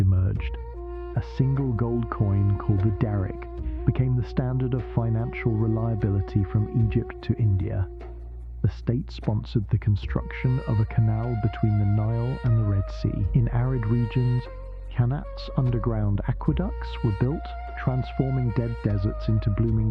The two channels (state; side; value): identical; both; correlation 1.00